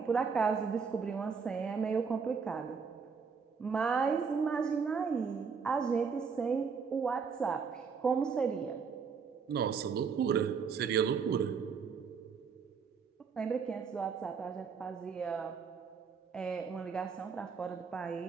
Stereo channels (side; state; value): left; quieter; 5.9 dB